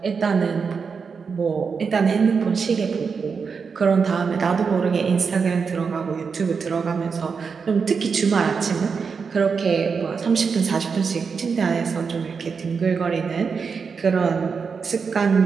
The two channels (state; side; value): quieter; left; 5.6 dB